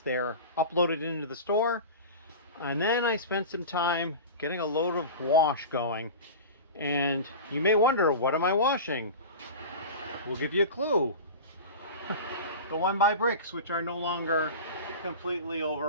They're uploaded into the store, and then I spent some time getting a load of wash going. And you may wonder, what am I washing? We'll give you a clue. The One by Bricks, which are no longer completely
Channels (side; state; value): both; inverted; correlation -0.31